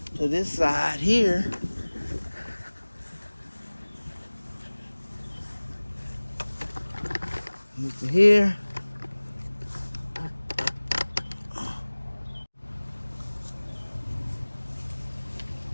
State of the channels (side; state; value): both; inverted; correlation -1.00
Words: to this side here. Move to here.